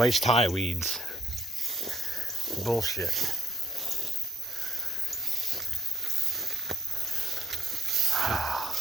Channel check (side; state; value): both; normal; correlation 0.69